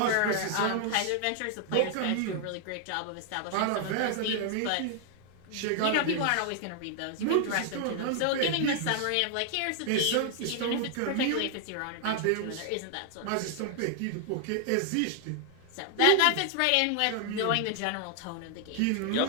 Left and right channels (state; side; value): different; both; correlation 0.00